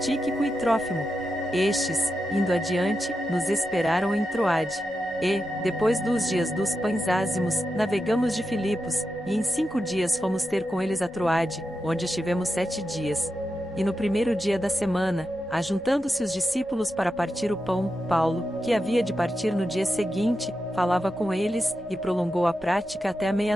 e Trófimo. Estes, indo adiante, nos esperaram em Troade. E, depois dos dias dos pães ázimos, navegamos de Filipos, e em 5 dias fomos ter com eles a Troade, onde estivemos 7 dias. E no primeiro dia da semana, ajuntando-se os discípulos para partir o pão, Paulo, que havia de partir no dia seguinte, falava com eles, e prolongou a prática até a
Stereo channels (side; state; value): left; noise; rumble, 26 dB below the sound